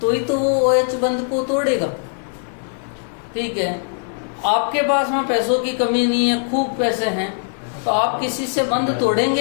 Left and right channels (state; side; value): silent; right; 57 dB below the other